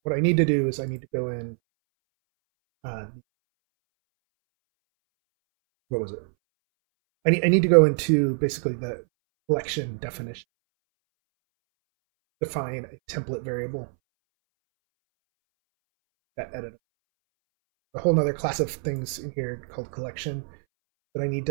What I need to do is I need to go in. What was it? I need to go into basically the collection definition, define a template variable that edit a whole nother class of things in here called collection that I need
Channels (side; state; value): left; silent; 61 dB below the other